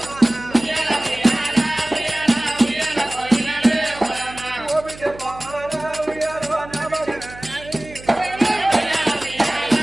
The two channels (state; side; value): noise; right; hum, 17 dB below the sound